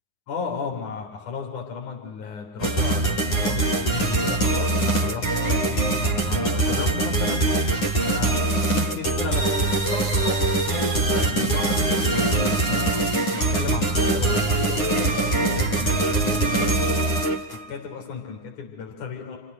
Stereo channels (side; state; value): right; late; 9.8 ms